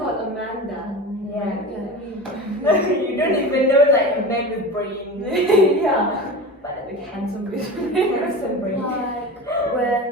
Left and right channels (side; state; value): both; normal; correlation 0.30